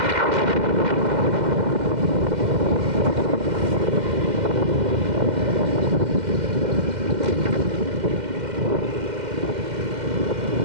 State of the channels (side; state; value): left; late; 2.1 ms